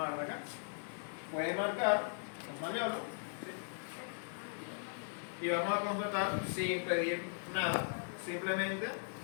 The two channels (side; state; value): right; silent; digital silence